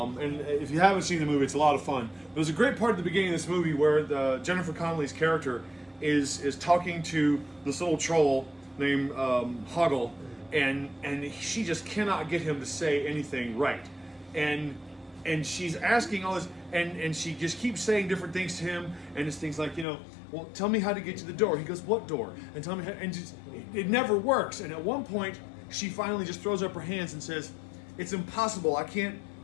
if you haven't seen the movie, it's a lot of fun. There's a great part at the beginning of this movie where Jennifer Connelly's character is talking to this little troll named Hoggle, and she just cannot get him to say anything right, and she's asking all this, and she just keeps saying different things to him, and it's things like, well, tell me how to get to the door. He goes, what door? And tell me how, and just, it never works. And at one point, she finally just throws up her hands and says, it's impossible. I can't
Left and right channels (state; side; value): drops out; right; at 19.9 s